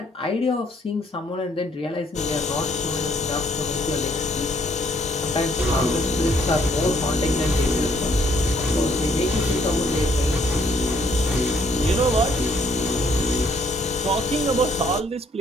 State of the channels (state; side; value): normal; both; correlation 0.66